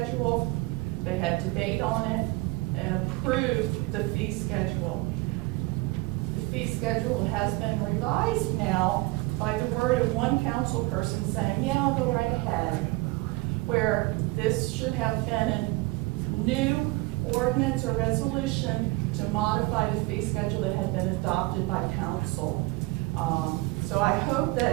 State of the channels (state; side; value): quieter; left; 22.6 dB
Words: they had debate on it, and approved the fee schedule. The fee schedule has been revised now by the word of one council person saying, yeah, I'll go right ahead, where this should have been a new ordinance or resolution to modify the fee schedule that had been adopted by council. So I hope